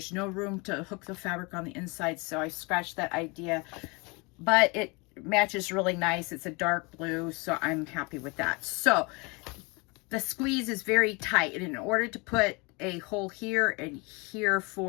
no room to hook the fabric on the inside, so I scratched that idea. But it matches really nice. It's a dark blue, so I'm happy with that. So the squeeze is very tight, and in order to put a hole here and here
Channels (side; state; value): right; quieter; 28.5 dB